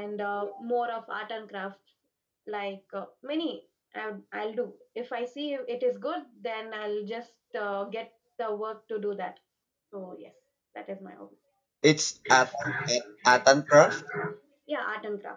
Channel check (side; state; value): both; identical; correlation 1.00